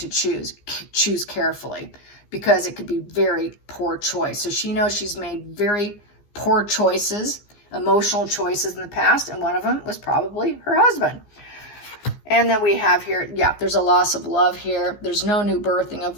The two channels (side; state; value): right; late; 15 ms